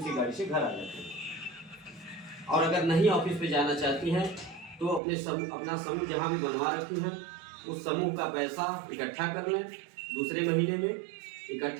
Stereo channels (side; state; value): left; drops out; at 5.0 s